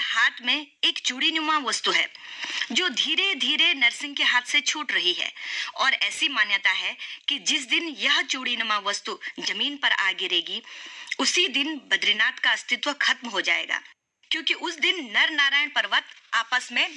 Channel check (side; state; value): both; identical; correlation 1.00